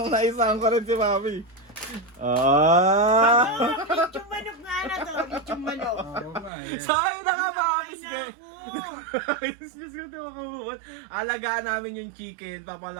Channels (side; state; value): left; drops out; at 6.5 s